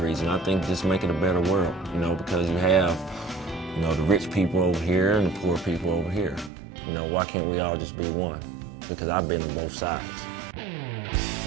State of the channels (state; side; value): drops out; left; at 6.5 s